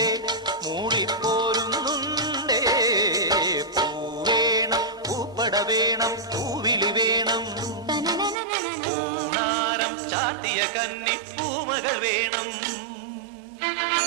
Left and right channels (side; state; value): left; drops out; at 8.3 s